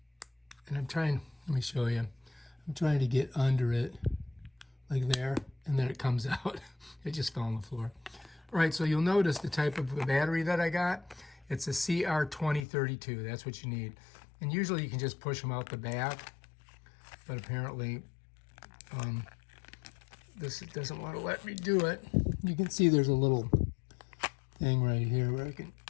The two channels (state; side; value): drops out; right; at 12.7 s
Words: And let me show you. I'm trying to get under it like there, and then it comes out. It just fell on the floor. All right, so you'll notice the type of battery that I got. It's a CR2032, that's what you need. And usually you can just push them out the back, but apparently this doesn't want to let me do it. You can see there's a little thing right here where I can,